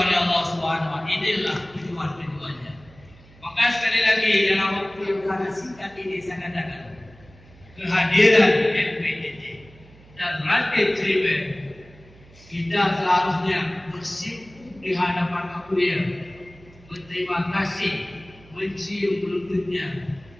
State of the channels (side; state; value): right; noise; hum, 24 dB below the sound